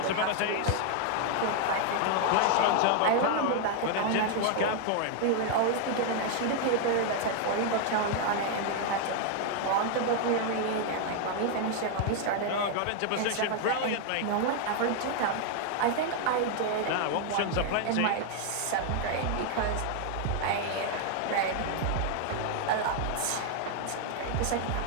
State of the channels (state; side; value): different; both; correlation 0.00